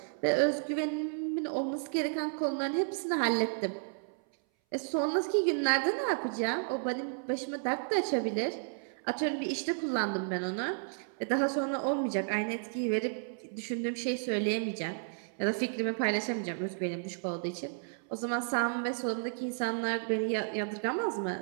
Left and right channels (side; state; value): left; silent; 56 dB below the other